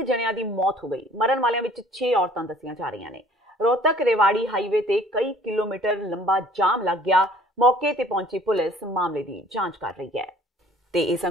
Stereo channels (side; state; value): both; normal; correlation 0.54